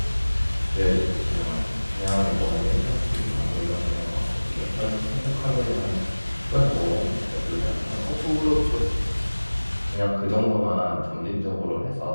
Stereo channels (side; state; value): both; inverted; correlation -1.00